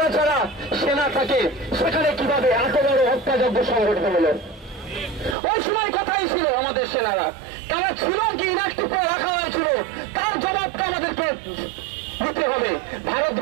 ছাড়া সেনা থাকে, সেখানে কিভাবে এত বড় হত্যাযজ্ঞ সংগঠিত হলো? ওই সময় কথাই ছিল আমাদের সেনারা, তারা ছিল কি ইনঅ্যাক্টিভ করে রাখা হয়েছিল, তার জবাবটা আমাদেরকে দিতে হবে।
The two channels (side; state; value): left; drops out; at 5.4 s